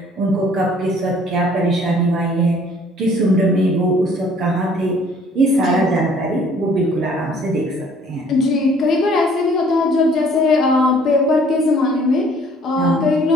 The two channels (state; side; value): normal; both; correlation 0.57